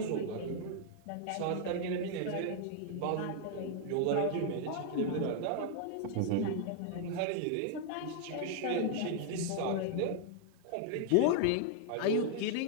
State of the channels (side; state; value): both; different; correlation 0.00